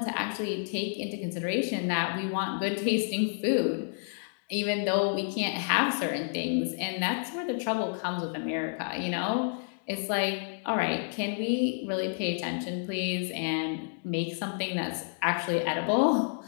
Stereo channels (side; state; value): right; silent; digital silence